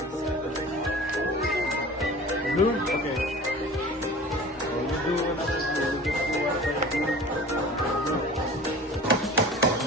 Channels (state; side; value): normal; both; correlation 0.40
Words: Blue? Okay. So, you do another blue. You just do another blue.